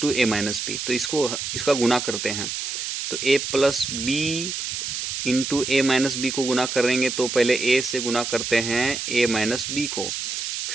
A minus B, तो इसका गुना करते हैं। तो a plus B into A minus B को गुना करेंगे तो पहले a से गुना करते हैं a माइनस बी को,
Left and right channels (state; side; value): noise; right; hiss, 4 dB below the sound